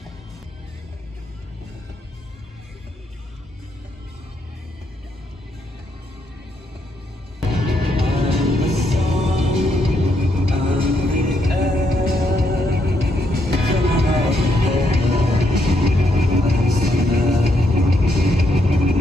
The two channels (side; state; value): both; normal; correlation 0.77